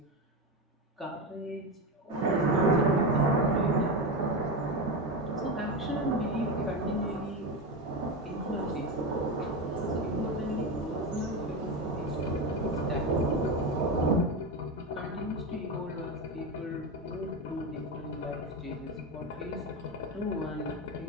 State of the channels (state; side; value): normal; both; correlation 0.17